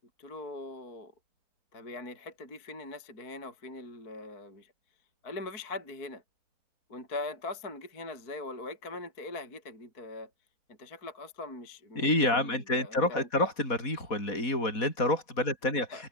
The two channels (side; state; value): right; late; 4.1 ms